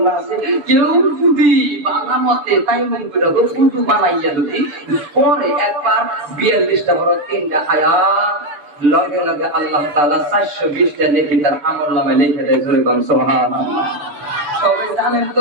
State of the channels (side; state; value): left; late; 6.8 ms